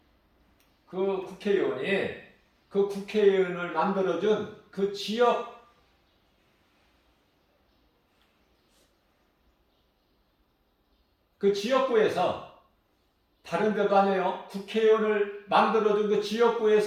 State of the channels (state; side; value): identical; both; correlation 1.00